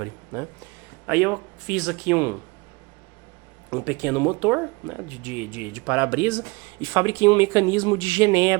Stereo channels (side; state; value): left; quieter; 25.4 dB